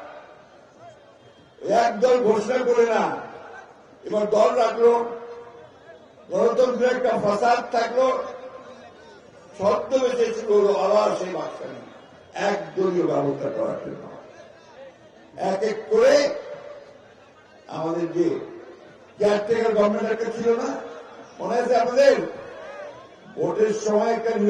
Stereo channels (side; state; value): both; identical; correlation 1.00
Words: একদল ঘোষণা করে না, এবার দল রাখলো, গণতন্ত্রের একটা ফাসাদ থাকলো, ছদ্মবেশে শুরু হলো আবার সেই বাকশালী একদলীয় ব্যবস্থা করার জন্য। এক এক করে আমাদের যে কেয়ারটেকার গভর্নমেন্ট একটা ছিল না, মনে আছে আপনাদের? ভোটের সময় একটা